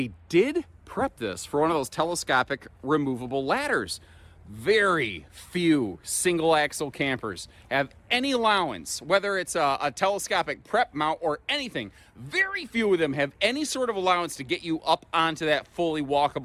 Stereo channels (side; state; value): both; identical; correlation 1.00